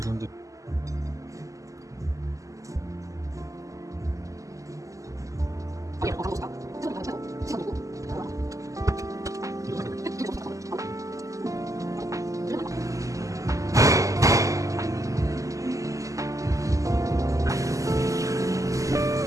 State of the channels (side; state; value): left; late; 0.16 ms